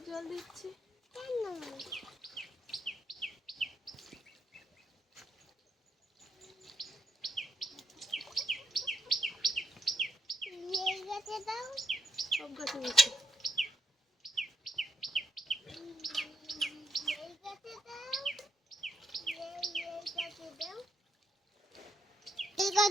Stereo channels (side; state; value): both; normal; correlation 0.79